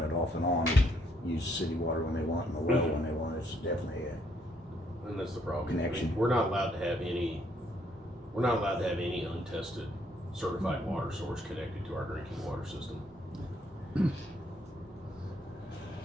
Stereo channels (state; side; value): normal; both; correlation 0.69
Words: it off and on, and use city water when they want, and the well when they want. It's definitely And that's the problem. Connection. We're not allowed to have any untested certified water source connected to our drinking water system.